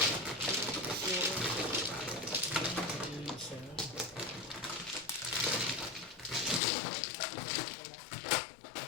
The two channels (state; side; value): drops out; right; at 6.6 s